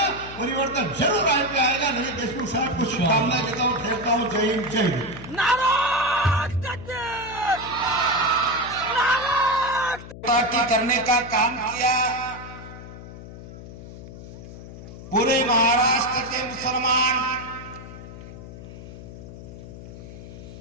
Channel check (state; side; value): noise; left; hum, 14 dB below the sound